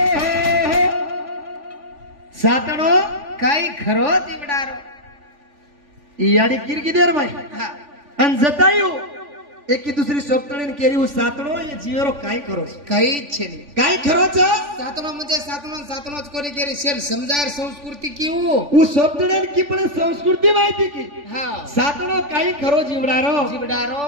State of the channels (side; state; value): left; late; 3.5 ms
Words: साताळो काही खरो दिवडारो याडी किरकिदेर माई हा आणि जतायू एकी दुसरी सोपतळीन केरी उ सातणो ये जीवरो काय करो काही इच्छे नाही काय खरोच सातनो म्हणजे सातनोच कोणी केली शेल समजार संस्कृती किऊ उ सोपतळीन की पण संस्कृती माहिती की हा सातणो काय खरो जीवडारो जीवडारो